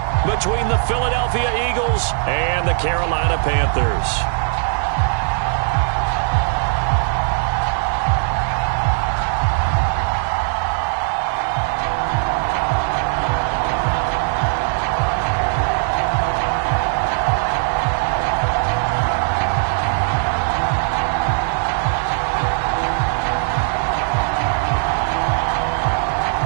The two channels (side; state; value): left; silent; 66 dB below the other